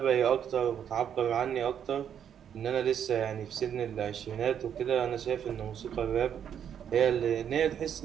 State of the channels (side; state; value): left; quieter; 8.8 dB